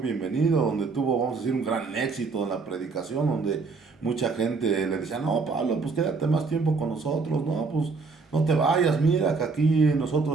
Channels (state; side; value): quieter; left; 4.4 dB